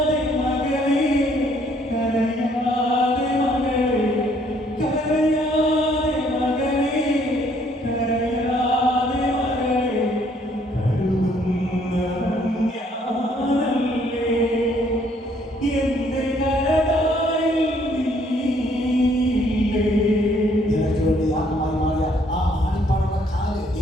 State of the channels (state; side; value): normal; both; correlation 0.65